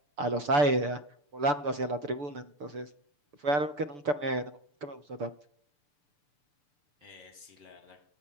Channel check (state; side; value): late; left; 6.9 ms